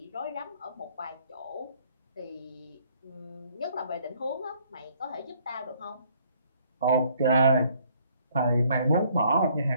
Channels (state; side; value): inverted; both; correlation -0.63